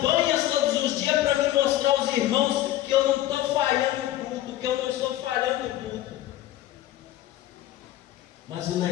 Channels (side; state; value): right; quieter; 13.8 dB